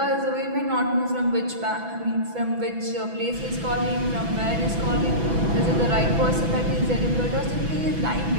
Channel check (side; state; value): left; late; 6.0 ms